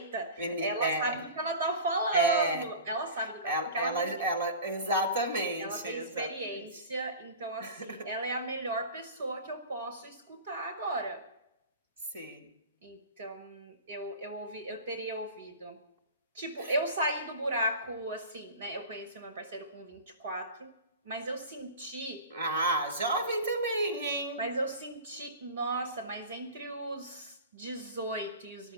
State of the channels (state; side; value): inverted; both; correlation -0.35